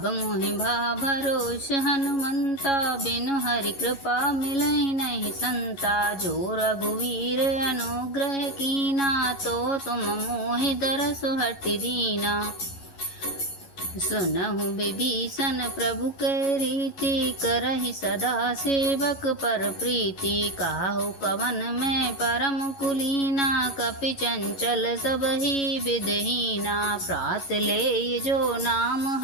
मोहि भा भरोस हनुमंता, बिनु हरि कृपा मिलहि नहीं संता। जो रघुवीर अनुग्रह कीना, तो तुम मोहि दरसु हटि दीना। सुनहु विभीषण प्रभु के रीति, करहि सदा सेवक पर प्रीति। काहु कवन में परम कुलीना, कपि चंचल सबहि विधहीना। प्रात ले जो नाम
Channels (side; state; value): right; late; 11 ms